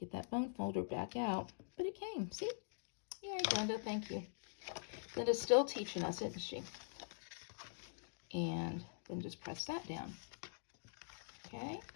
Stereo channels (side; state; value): right; silent; digital silence